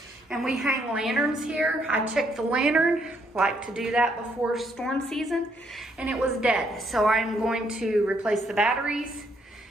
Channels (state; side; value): normal; both; correlation 0.72